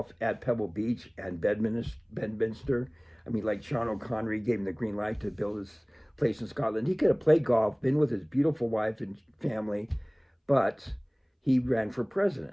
at Pebble Beach and Bedminster. I mean, like Sean O'Connery gave him the green light to build his place in Scotland. He could have played golf, been with his beautiful wife and family, but he ran for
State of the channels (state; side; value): identical; both; correlation 1.00